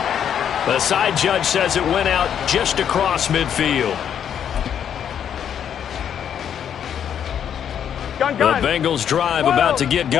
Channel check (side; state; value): right; quieter; 8.9 dB